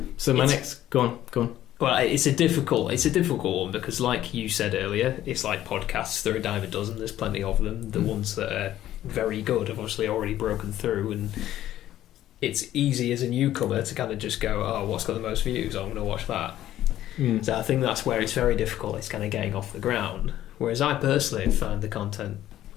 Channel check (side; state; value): right; quieter; 12.9 dB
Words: so my next... Go on. Well, it's a difficult one, because like you said earlier, it's like podcasts. There are a dime a dozen. There's plenty of them. The ones that are very good have obviously already broken through, and it's easy as a newcomer to kind of just go, oh, what's got the most views? I'm going to watch that. So I think that's where it's very difficult. It's kind of getting off the ground. Whereas I personally find the content,